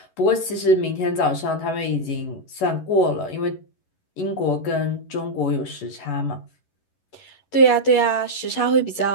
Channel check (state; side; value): late; right; 11 ms